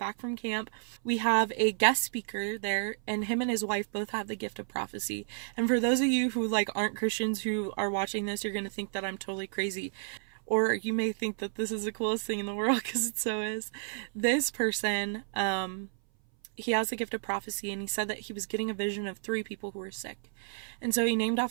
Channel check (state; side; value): silent; left; 57 dB below the other